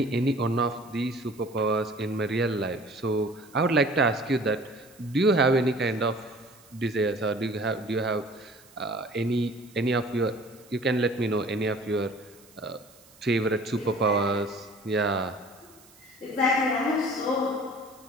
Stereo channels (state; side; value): noise; right; hiss, 26 dB below the sound